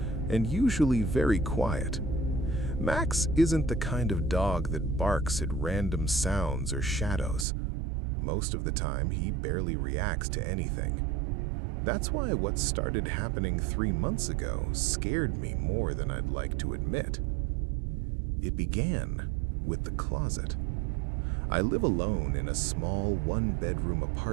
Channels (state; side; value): drops out; left; at 7.5 s